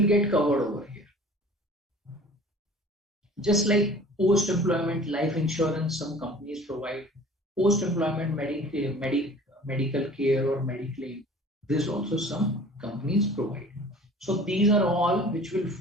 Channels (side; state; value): both; normal; correlation 0.46